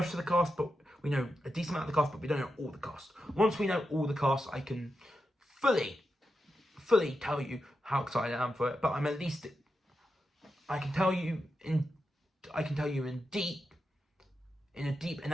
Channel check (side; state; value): both; normal; correlation 0.87